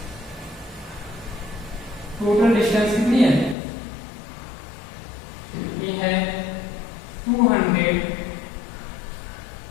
total distance कितनी है? ये है 200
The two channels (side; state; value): right; drops out; at 3.6 s